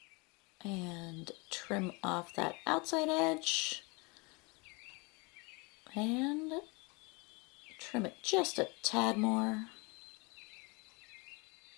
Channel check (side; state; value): right; quieter; 28.9 dB